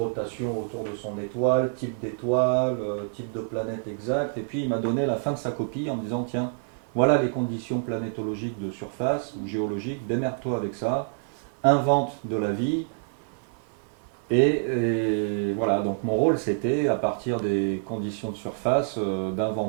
autour de son étoile, type d'étoile, type de planète exact, et puis il m'a donné la fin de sa copie en me disant, tiens, voilà les conditions planétologiques de surface ou géologiques, démerde-toi avec ça, invente de la vie. Et voilà, donc mon rôle c'était, à partir des conditions de surface,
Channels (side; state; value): left; silent; 60 dB below the other